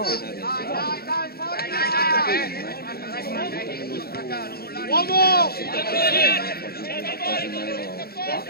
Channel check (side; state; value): right; late; 0.45 ms